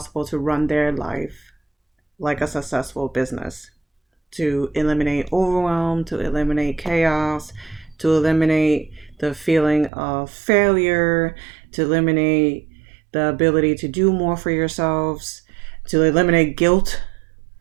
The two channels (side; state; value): left; drops out; at 9.9 s